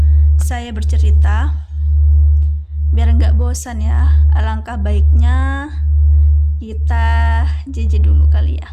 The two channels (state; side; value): identical; both; correlation 1.00